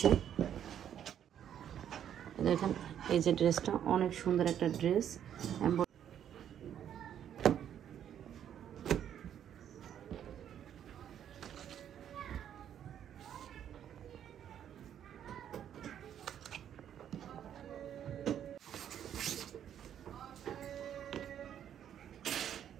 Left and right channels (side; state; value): left; quieter; 9.7 dB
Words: দেখেন এই যে ড্রেসটা অনেক সুন্দর একটা ড্রেস,